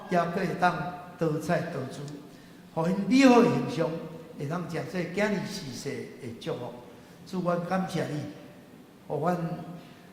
也佫会当多彩多姿，互因美好的形象会当诚做囝儿世世的祝福。主，阮感谢你，互阮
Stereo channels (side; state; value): both; identical; correlation 1.00